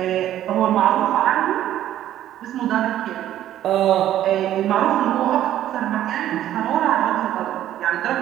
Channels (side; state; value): left; quieter; 12.2 dB